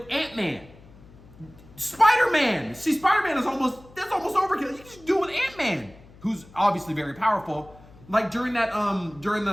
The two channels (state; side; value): noise; left; hum, 23 dB below the sound